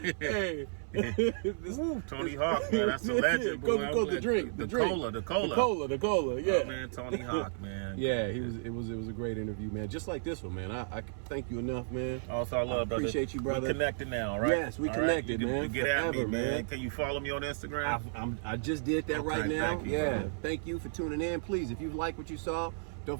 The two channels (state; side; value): silent; left; 56 dB below the other